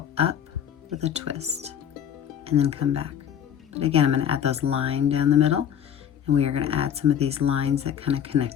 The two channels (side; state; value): right; quieter; 9.2 dB